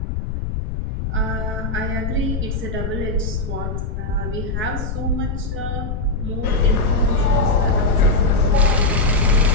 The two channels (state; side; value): noise; left; rumble, 4 dB below the sound